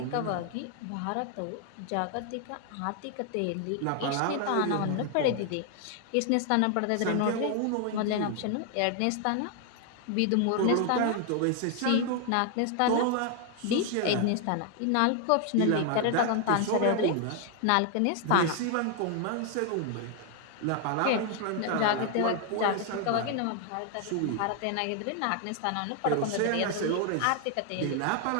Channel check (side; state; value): both; different; correlation 0.00